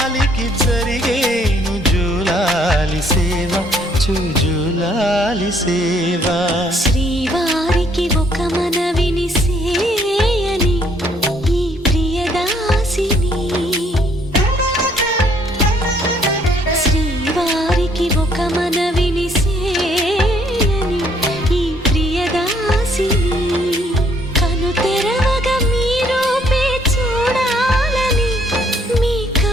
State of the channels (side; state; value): both; normal; correlation 0.66